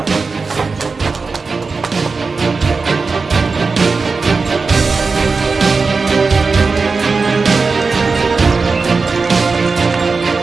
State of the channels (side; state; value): left; quieter; 4.4 dB